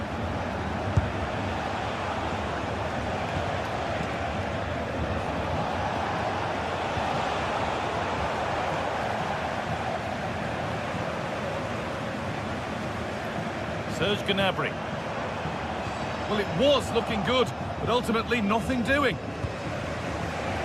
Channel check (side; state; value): both; identical; correlation 1.00